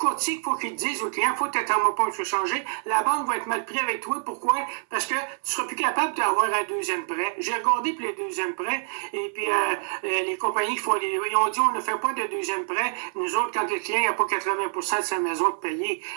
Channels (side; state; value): left; silent; 61 dB below the other